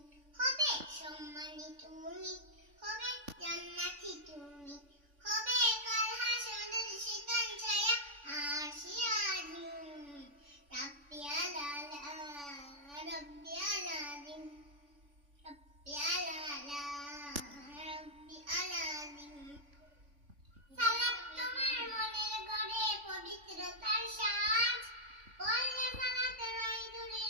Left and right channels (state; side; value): late; left; 3.5 ms